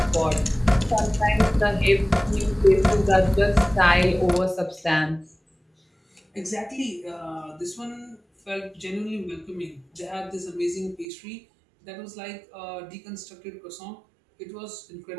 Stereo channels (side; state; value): left; drops out; at 11.1 s